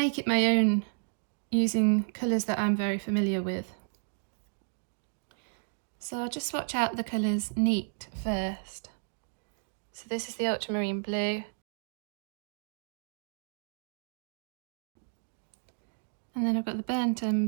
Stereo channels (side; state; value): left; silent; digital silence